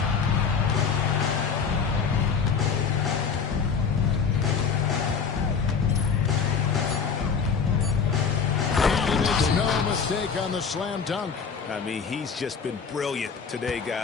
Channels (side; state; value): right; quieter; 6.0 dB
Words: And it's no mistake on the slam dunk. I mean, he's just been brilliant today,